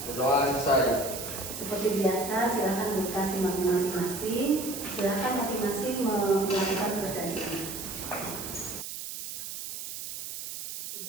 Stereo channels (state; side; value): noise; right; hiss, 8 dB below the sound